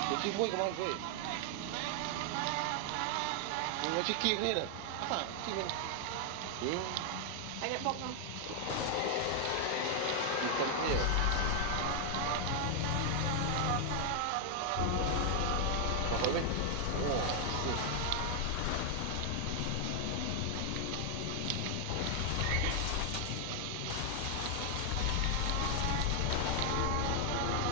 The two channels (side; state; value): both; different; correlation 0.00